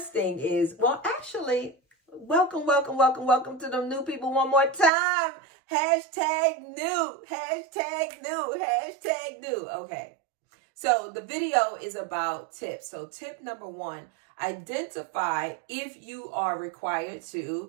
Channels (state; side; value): drops out; left; at 4.9 s